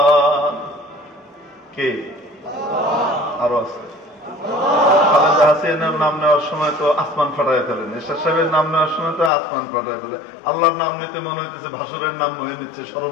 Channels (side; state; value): right; drops out; at 9.3 s